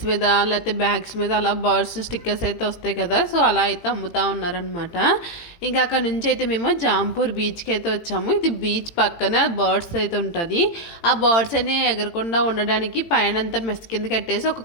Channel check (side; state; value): right; late; 18 ms